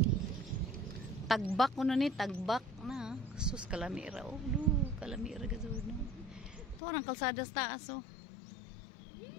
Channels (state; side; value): drops out; right; at 6.8 s